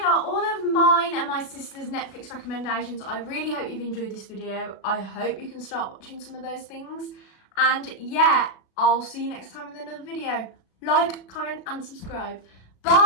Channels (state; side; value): late; right; 37 ms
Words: all of mine and my sister's Netflix recommendations. I really hope you've enjoyed this video. I hope you can start watching some of those things. And yeah, I'll see you next time with another video. Like, comment and subscribe.